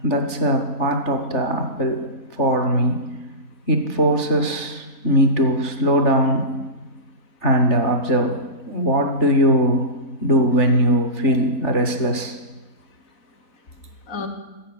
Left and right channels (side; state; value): right; late; 3.4 ms